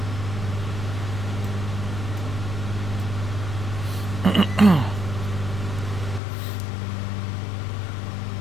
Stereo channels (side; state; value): right; drops out; at 6.2 s